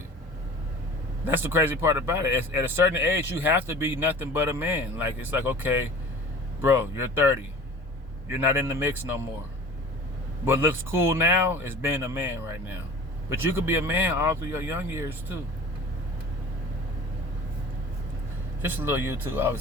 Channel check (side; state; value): both; normal; correlation 0.42